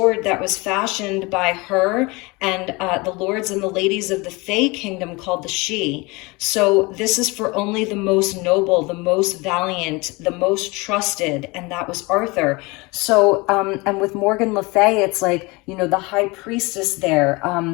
that was fashioned by her and the lords and the ladies of the Fey kingdom called the Sidhe. So this is for only the most noble, the most valiant, the most trusted, and that was Arthur. So, and with Morgan Le Fay, it's like, the high priestess there,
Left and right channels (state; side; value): quieter; right; 25.2 dB